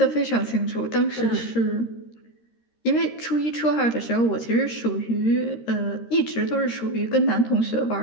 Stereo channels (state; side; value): late; right; 13 ms